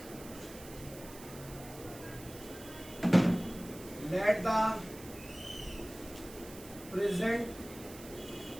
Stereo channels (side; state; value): right; noise; hiss, 16 dB below the sound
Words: let the present